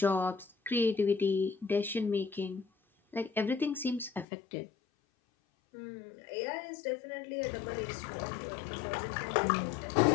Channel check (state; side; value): drops out; right; at 4.2 s